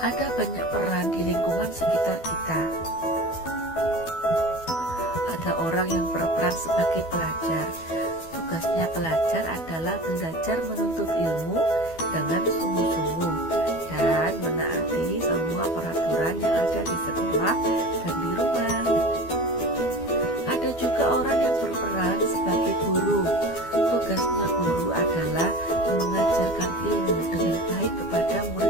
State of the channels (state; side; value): late; right; 12 ms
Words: banyak peran di lingkungan sekitar kita. Ada orang yang berperan sebagai pelajar. Tugasnya pelajar adalah belajar menuntut ilmu dengan sungguh-sungguh dan menaati semua peraturan yang ada di sekolah dan di rumah. Ada juga orang yang berperan sebagai guru. Tugasnya guru adalah mengajarkan ilmu dengan baik kepada